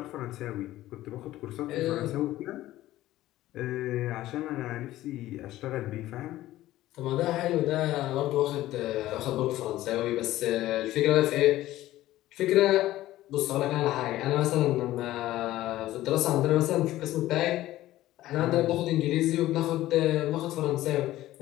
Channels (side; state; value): right; quieter; 15.2 dB